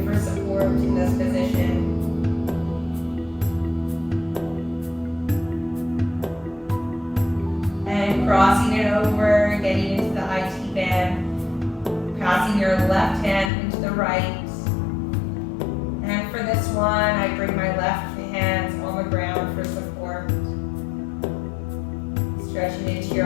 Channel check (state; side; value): drops out; right; at 13.5 s